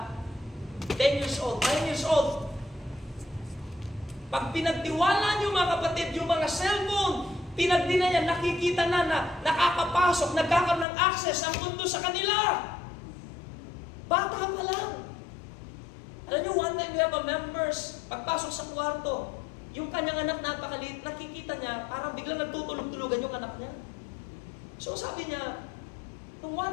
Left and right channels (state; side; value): drops out; right; at 10.9 s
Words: 10 years old, 9 years old, pag pinagtiwala nyo mga kapatid, yung mga cellphone, pinagdina niya, nakikita na nakakapasok, nagkakaroon ng access ang mundo sa kanila. Bata pa lang. Alam niyo, one time we have a members, pagpasok sa kwarto, Yung kanyang anak napakaliit, nakikita niya, parang biglang nagtutulog-tulugan yung anak niya. So sabi niya, nung